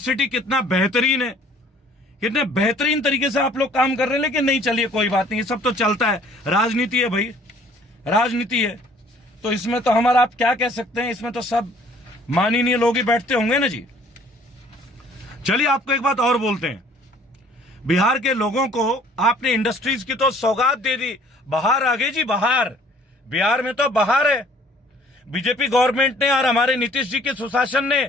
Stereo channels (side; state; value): both; normal; correlation 0.56